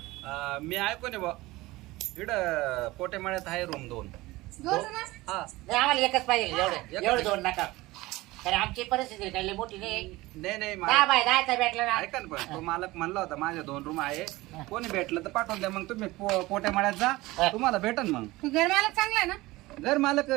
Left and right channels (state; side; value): quieter; left; 19.8 dB